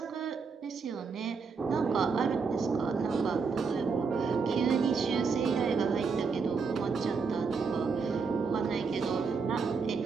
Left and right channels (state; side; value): quieter; left; 5.1 dB